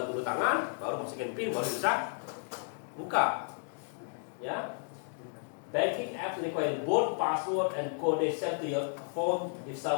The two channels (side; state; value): right; silent; 56 dB below the other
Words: dulu tangan, baru masukin PIN, baru bisa buka. Ya. Banking apps require both password and code sent to your phone. If